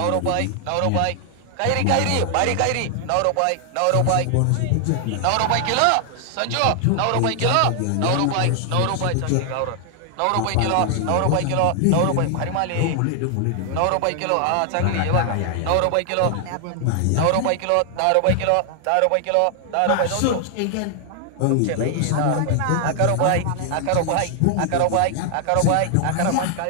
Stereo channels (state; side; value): different; both; correlation 0.00